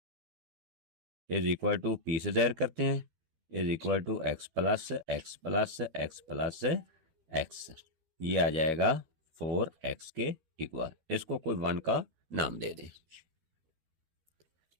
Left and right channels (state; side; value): late; left; 12 ms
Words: is equal to P से ज़ाहिर करते हैं, is equal to x plus x plus x plus x. ये आ जाएगा 4x के इक्वल। इसको कोई 1 का नाम दे दें।